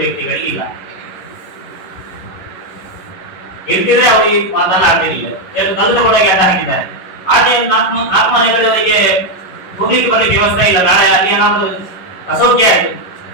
ವ್ಯಕ್ತಿಗಳಿಗೆ ಇಲ್ಲ. ಇರ್ತಿದ್ರೆ ಅವರು ಈ ಮಾತನ್ನ ಆಡ್ತಿರ್ಲಿಲ್ಲ. ಕಲ್ಲದ ಒಳಗೆ ಅಡ್ಡ ಹಾಕಿದ್ದಾರೆ. ಆದ್ರೆ 4 ಮನೆಗಳವರಿಗೆ ಹೋಗ್ಲಿಕ್ಕೆ ಬರ್ಲಿಕ್ಕೆ ವ್ಯವಸ್ಥೆ ಇಲ್ಲ. ನಾಳೆ ಅಲ್ಲಿ ಏನಾದ್ರು ಅಸೌಖ್ಯ ಆಯ್ತು,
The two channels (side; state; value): right; late; 11 ms